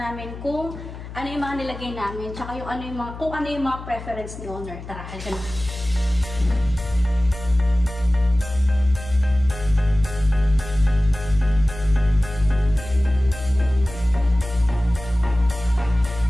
kung ano yung mga nilagay namin, tsaka kung ano yung mga preference ni owner. Tara, halika na.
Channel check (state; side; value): noise; left; hum, 12 dB below the sound